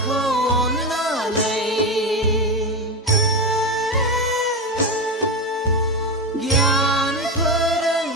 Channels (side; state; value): both; normal; correlation 0.16